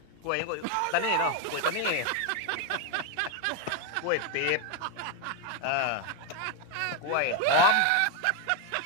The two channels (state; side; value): different; both; correlation 0.01